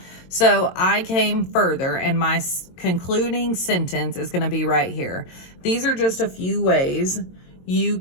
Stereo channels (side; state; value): right; late; 22 ms